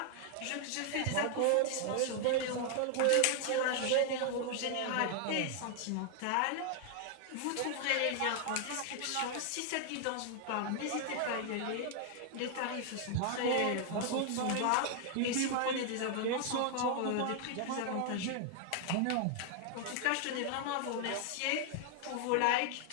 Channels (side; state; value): both; different; correlation 0.00